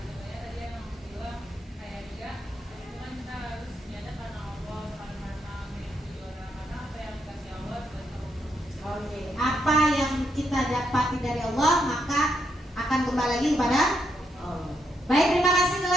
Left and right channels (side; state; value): both; normal; correlation 0.79